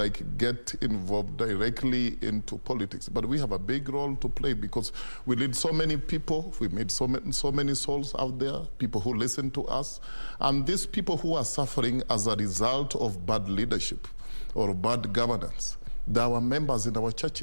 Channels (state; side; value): inverted; both; correlation -1.00